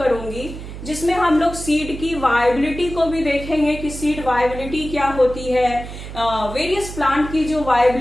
जिसमें हम लोग सीड की वायबिलिटी को भी देखेंगे कि सीड वायबिलिटी क्या होती है। वेरियस प्लांट की जो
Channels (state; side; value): noise; right; hum, 11 dB below the sound